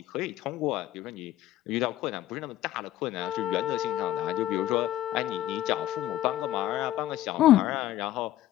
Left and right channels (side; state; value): right; quieter; 13.9 dB